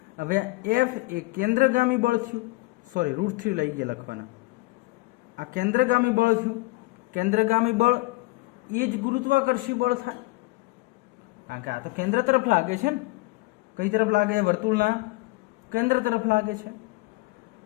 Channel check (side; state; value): right; quieter; 22.1 dB